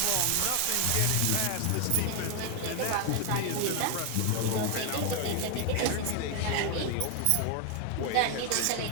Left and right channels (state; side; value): different; both; correlation 0.00